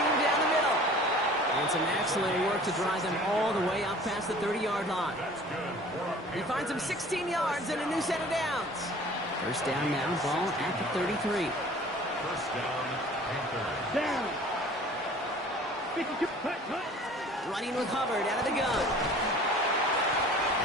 down the middle. And some excellent work to drive them all the way up past the 30-yard line. That's good. He finds him 16 yards and a new set of downs. First down now, ball at the 33. 1st down, Panthers. Down. 52. Cut. Running with Hubbard out of the gun.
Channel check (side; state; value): both; normal; correlation 0.47